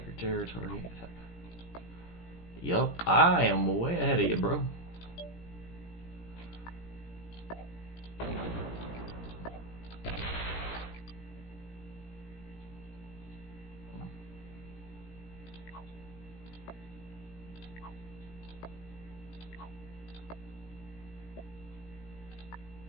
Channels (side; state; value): right; late; 17 ms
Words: your territory. Attack. Yup, I am way ahead of you, bro.